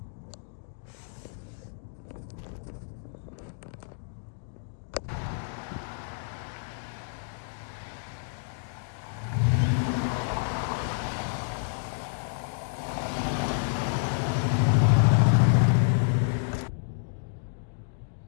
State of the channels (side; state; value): right; silent; digital silence